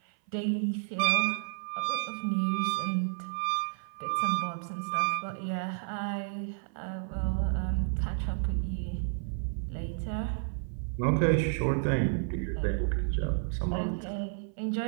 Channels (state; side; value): silent; left; 56 dB below the other